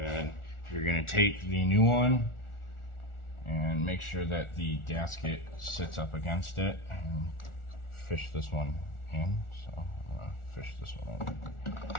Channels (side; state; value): right; late; 1.4 ms